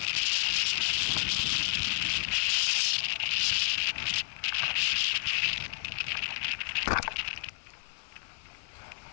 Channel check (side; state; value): right; silent; 57 dB below the other